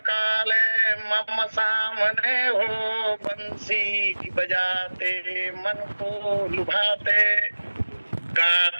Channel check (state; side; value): inverted; both; correlation -1.00